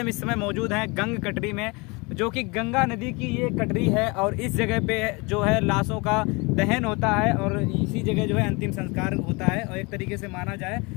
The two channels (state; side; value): quieter; right; 27.5 dB